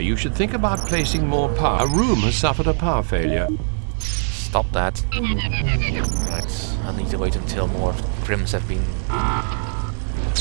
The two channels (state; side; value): silent; left; digital silence